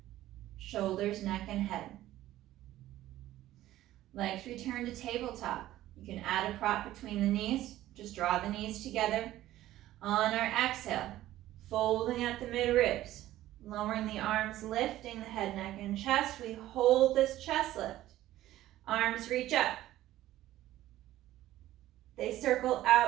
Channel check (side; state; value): left; quieter; 14.5 dB